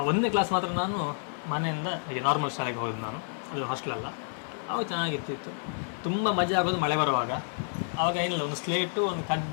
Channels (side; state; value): right; silent; digital silence